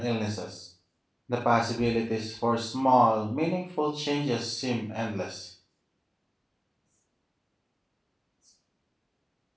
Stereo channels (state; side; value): identical; both; correlation 1.00